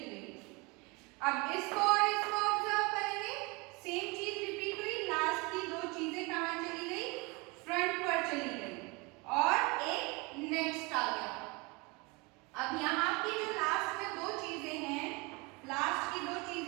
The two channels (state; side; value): quieter; left; 26.8 dB